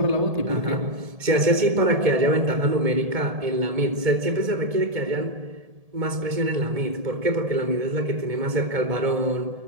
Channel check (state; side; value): late; left; 1.7 ms